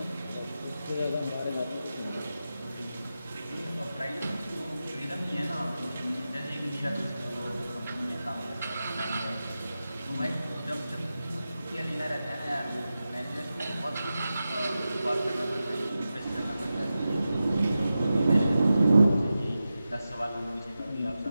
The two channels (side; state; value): both; inverted; correlation -0.93